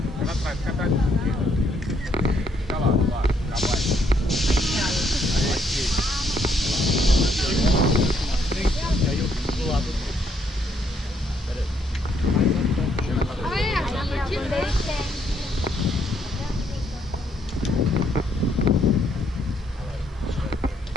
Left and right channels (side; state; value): both; normal; correlation 0.72